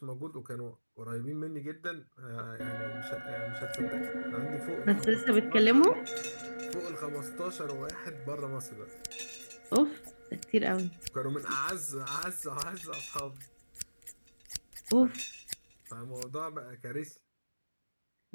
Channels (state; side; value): inverted; both; correlation -1.00